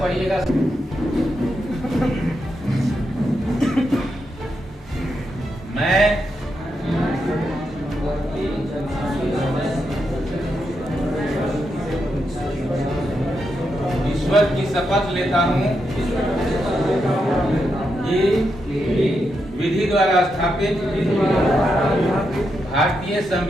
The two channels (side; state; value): both; normal; correlation 0.84